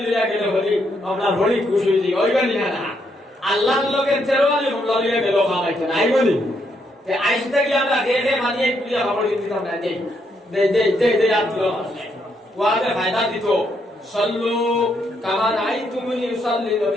লইয়া গেলে হরি আপনার হরি খুশি হইছি ওইবানি না আল্লাহর লগে তেরোয়ালি হমলা লইয়া গেল খামাইতে নাই বলি তে আইস থাকি আমরা হে মানিয়ে কুলিয়া খবর দিতাম না দে আব্দুল ওয়াতে ফায়দা দিত সল্লু কামা রাআইতুমুনি ইউসাল্লি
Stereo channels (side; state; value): both; normal; correlation 0.76